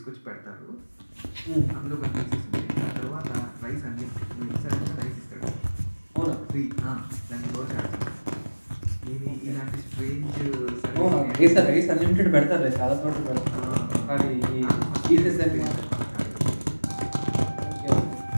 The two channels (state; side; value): inverted; both; correlation -1.00